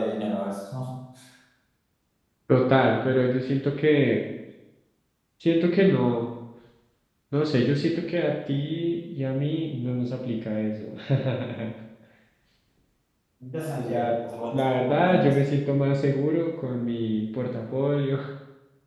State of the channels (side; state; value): both; identical; correlation 1.00